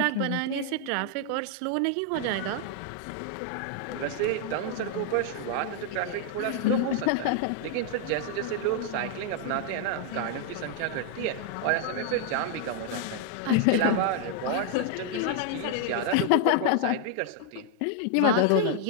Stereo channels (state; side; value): different; both; correlation 0.00